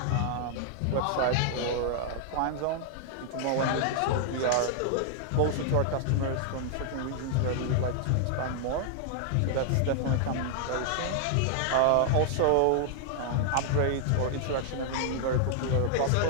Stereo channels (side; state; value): both; different; correlation 0.00